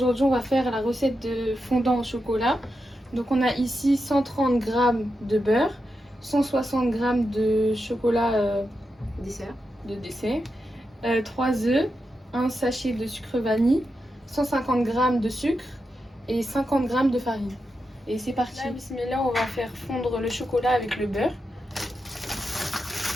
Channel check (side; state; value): both; normal; correlation 0.88